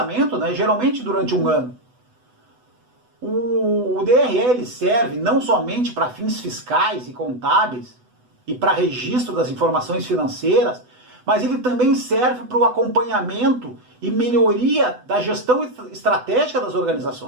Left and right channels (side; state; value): left; late; 8.0 ms